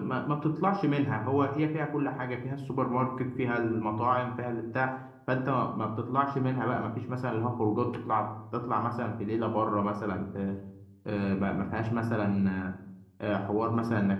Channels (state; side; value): identical; both; correlation 1.00